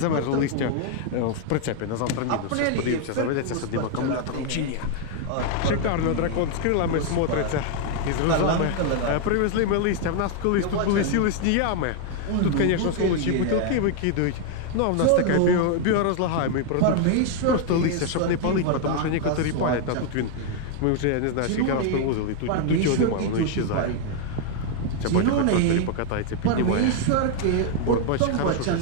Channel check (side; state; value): both; different; correlation 0.00